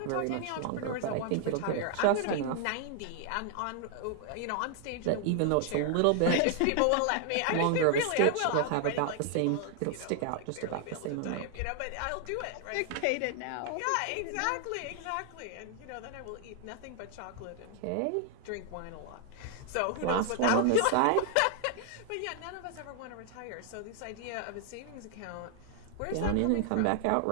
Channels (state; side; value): different; both; correlation 0.00